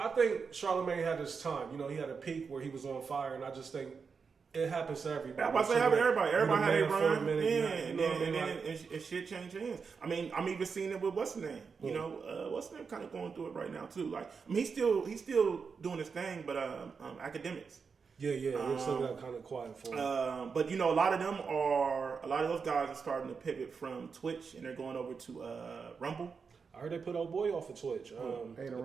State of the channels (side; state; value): left; quieter; 5.5 dB